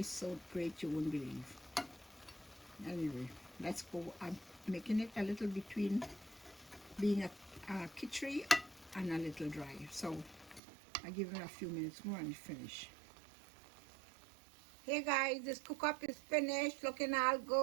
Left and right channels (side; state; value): left; drops out; at 10.6 s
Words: so great you wouldn't believe. Anyway, let's go. I'm making it a little between being a kitchre and a little dry. So I give it a few minutes more and finish. Hey guys, this cook up is finished, looking all